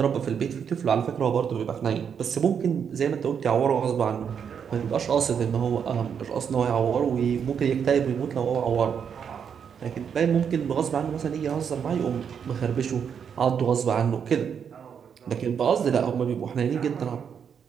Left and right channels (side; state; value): left; quieter; 7.4 dB